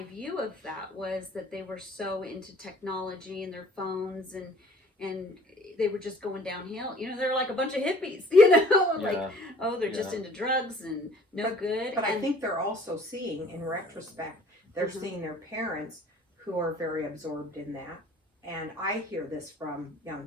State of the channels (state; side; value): normal; both; correlation 0.53